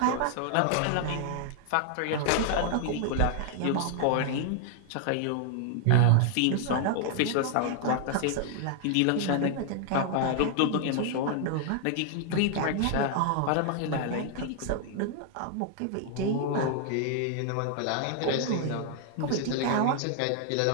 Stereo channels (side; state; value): both; different; correlation 0.00